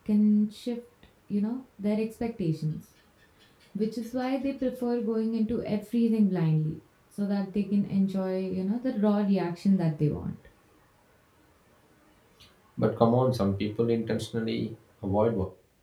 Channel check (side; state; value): both; identical; correlation 1.00